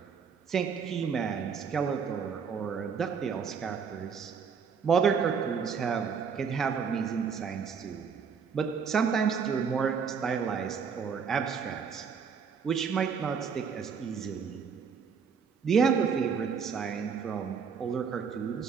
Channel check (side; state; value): left; quieter; 6.3 dB